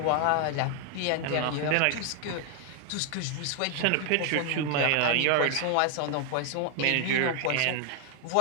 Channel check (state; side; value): different; both; correlation 0.00